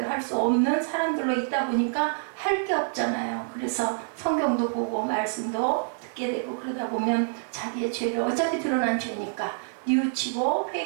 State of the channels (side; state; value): left; silent; 60 dB below the other